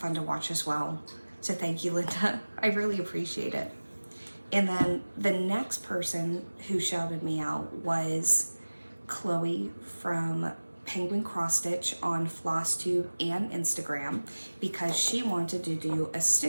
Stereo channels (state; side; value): inverted; both; correlation -1.00